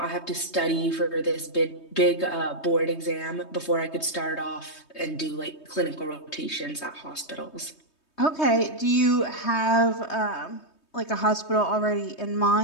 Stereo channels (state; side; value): late; right; 3.2 ms